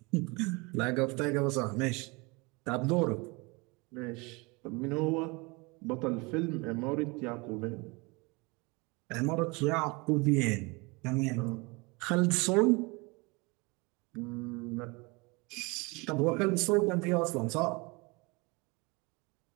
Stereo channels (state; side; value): quieter; left; 27.2 dB